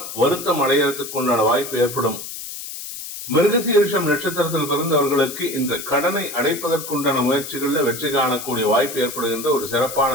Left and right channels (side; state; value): left; noise; hiss, 9 dB below the sound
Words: வருத்தம் அடைகிறதுக்கு உண்டான வாய்ப்பு ஏற்படும். மிருகசீரிஷம் நட்சத்திரத்தில் பிறந்தவர்களுக்கு இந்த கடனை அடைப்பதற்குண்டான முயற்சிகள்ல வெற்றி காணக்கூடிய வாய்ப்பு ஏற்படுகின்ற ஒரு சிறப்பான